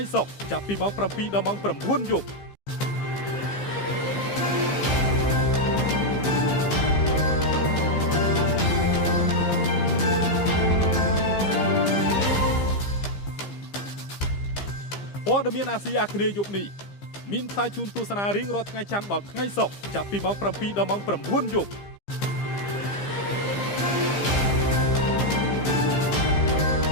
សុក្រចាប់ពីម៉ោង 7 ដល់ម៉ោង 9 យប់ព័ត៌មានអាស៊ីអាគ្នេយ៍យប់នេះមានផ្សាយជូនទស្សនារៀងរាល់ថ្ងៃច័ន្ទដល់ថ្ងៃសុក្រចាប់ពីម៉ោង 7 ដល់ម៉ោង 9 យប់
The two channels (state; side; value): late; right; 15 ms